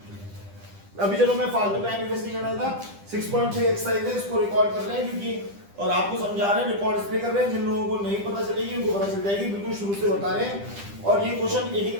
अभी चलो मैं फालतू टाइम इन्वेस्ट नहीं कर रहा था। 6.3 एक्सरसाइज है, इसको रिकॉर्ड कर रहे हैं क्योंकि और आपको समझा रहे हैं, रिकॉर्ड इसलिए कर रहे हैं जिन लोगों को नहीं पता चलेगी उनको पता चल जाएगी। बिल्कुल शुरू से बता रहे हैं और ये क्वेश्चन एक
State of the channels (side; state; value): left; late; 10 ms